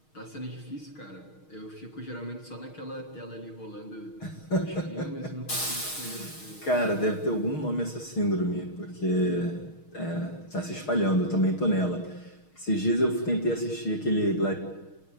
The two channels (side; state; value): right; late; 6.4 ms